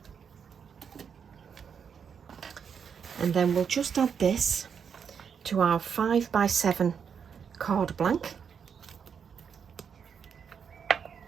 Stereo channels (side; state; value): left; quieter; 7.0 dB